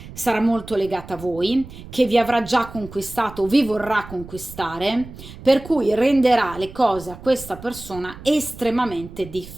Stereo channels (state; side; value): noise; right; rumble, 15 dB below the sound